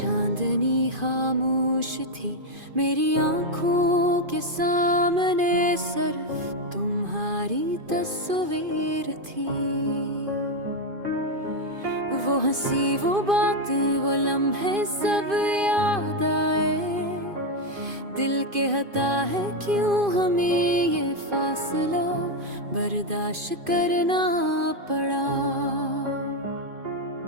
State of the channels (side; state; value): left; late; 2.5 ms